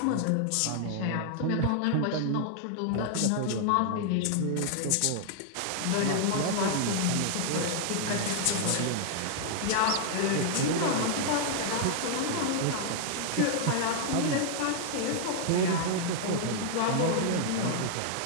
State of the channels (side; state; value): both; different; correlation -0.01